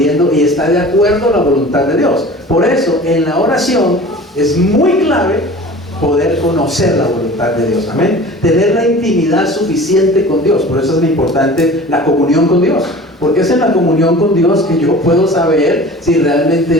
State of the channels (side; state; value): both; normal; correlation 0.41